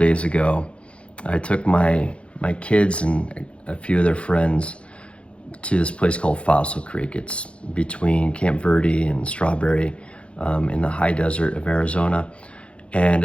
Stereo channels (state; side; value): late; right; 0.060 ms